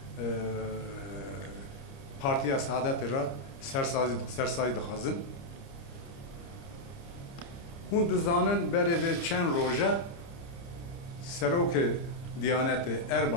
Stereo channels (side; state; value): right; late; 30 ms